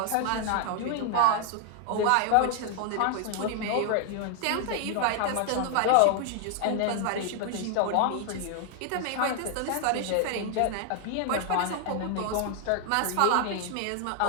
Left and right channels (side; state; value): both; different; correlation 0.00